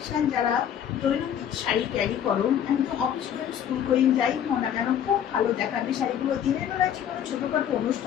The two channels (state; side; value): quieter; right; 9.4 dB